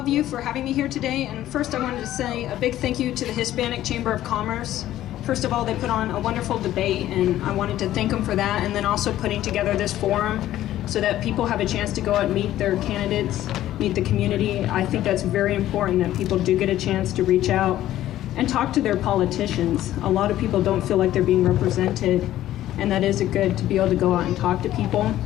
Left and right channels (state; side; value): quieter; right; 13.4 dB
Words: you for having me here today. And first, I wanted to say a big thank you to the Hispanic Chamber of Commerce. First of all, they put on a wonderful debate, and I wanted to thank them for that. And then also putting together this forum so that people have a chance to go out and meet their candidates, meet the community. I think that's very important that people do get a chance to reach out and talk to their politicians. A lot of people don't feel like they're being represented, and that is good to be able to go out and talk to people.